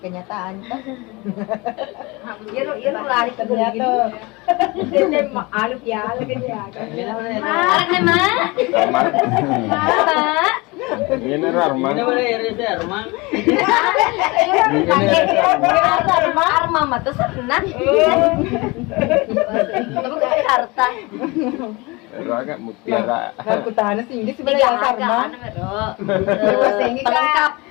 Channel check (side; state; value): right; quieter; 24.9 dB